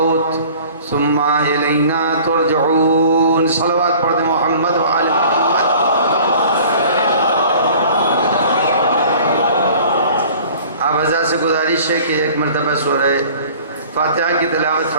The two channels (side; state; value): both; inverted; correlation -0.47